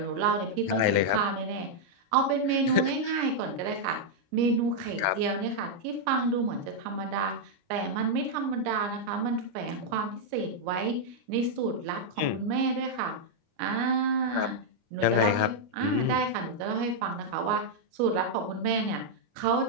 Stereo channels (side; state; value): left; late; 29 ms